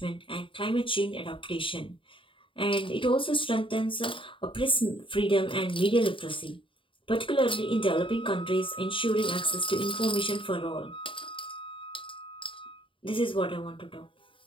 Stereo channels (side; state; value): right; late; 0.25 ms